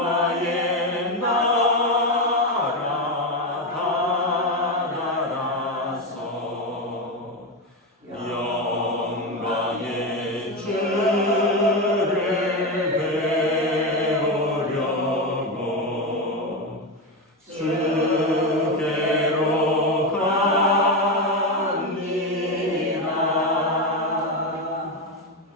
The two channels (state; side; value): normal; both; correlation 0.13